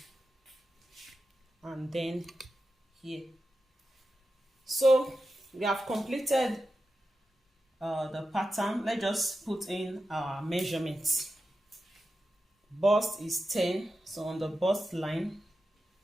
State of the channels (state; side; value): normal; both; correlation 0.91